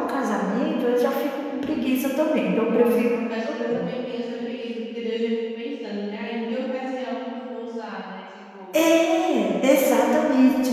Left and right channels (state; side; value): identical; both; correlation 1.00